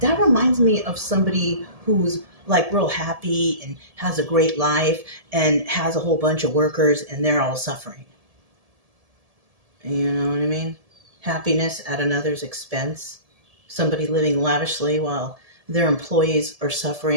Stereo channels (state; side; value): late; left; 1.7 ms